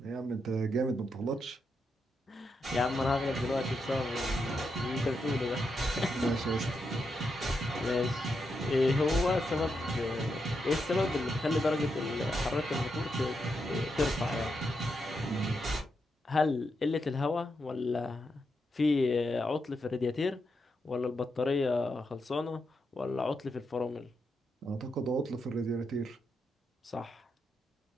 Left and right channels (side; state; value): both; normal; correlation 0.83